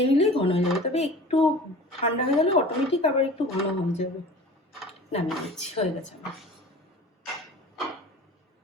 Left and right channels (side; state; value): both; normal; correlation 0.41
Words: নিলেই ঘন হয়ে যাবে, তবে একটু ঠান্ডা হয়ে গেলে অটোমেটিক আবার একটু ঘন হয়ে যাবে। নামিয়ে দিচ্ছি, হয়ে গেছে আমার।